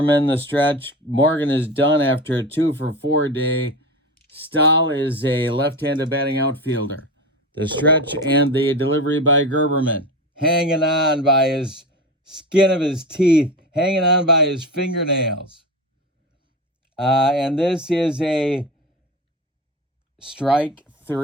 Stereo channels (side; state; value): both; normal; correlation 0.24